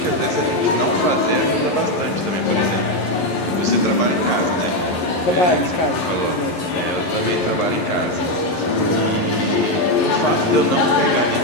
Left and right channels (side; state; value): right; late; 11 ms